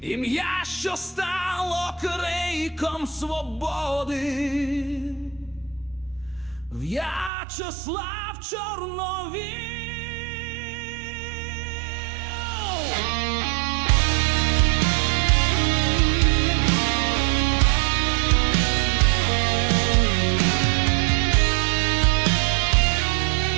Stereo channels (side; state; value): left; drops out; at 7.3 s